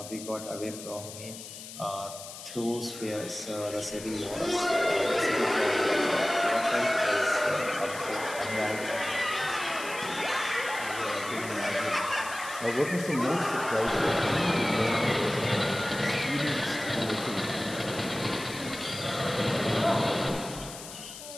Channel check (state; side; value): noise; left; hiss, 12 dB below the sound